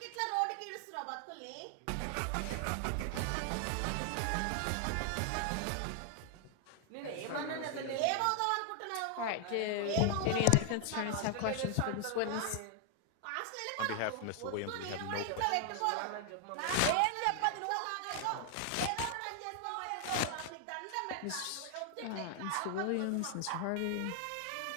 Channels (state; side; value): different; both; correlation 0.00